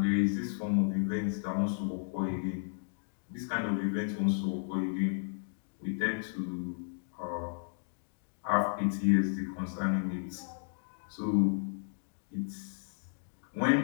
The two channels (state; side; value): silent; right; digital silence